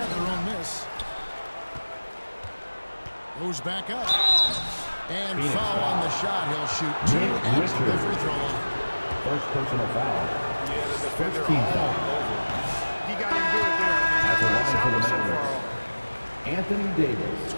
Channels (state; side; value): inverted; both; correlation -1.00